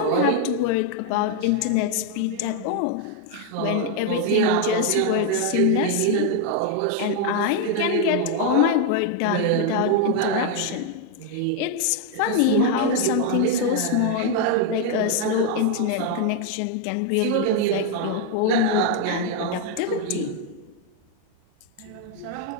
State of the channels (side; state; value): both; different; correlation 0.01